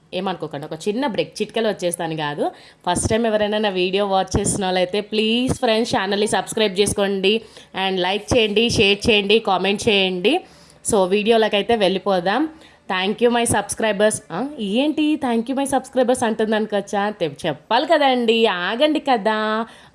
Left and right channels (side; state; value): both; identical; correlation 1.00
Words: ఏమనుకోకండి, ఒక చిన్న బ్రేక్, చిట్కలు వచ్చేస్తాను కాదు. ఫస్ట్ టైం ఎవరైనా నా వీడియో వాచ్ చేసిన వాళ్ళైతే ప్లీజ్ ఫ్రెండ్స్ ఛానల్ని సబ్స్క్రైబ్ చేసుకోండి అండ్ లైక్ చేయండి, షేర్ చేయండి, కామెంట్ చేయండి. సో వీడియోలకైతే వెళ్ళిపోదాం. Thank you my subscribers. ఏంటి థ్యాంక్ యూ మై సబ్స్క్రైబర్స్ అంటుంది అనుకోవచ్చా? చెప్పాలి కదండి, ఆగండి కదా,